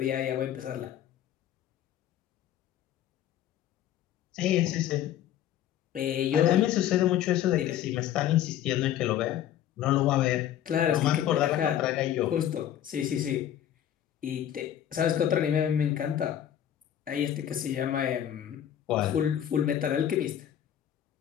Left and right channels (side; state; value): right; quieter; 10.8 dB